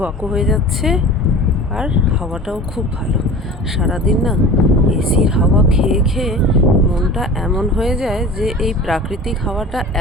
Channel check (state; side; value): normal; both; correlation 0.38